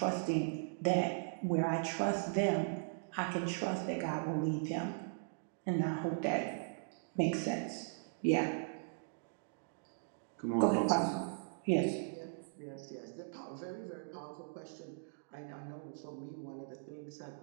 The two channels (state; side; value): silent; left; digital silence